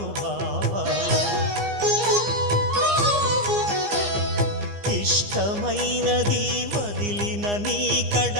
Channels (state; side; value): late; left; 15 ms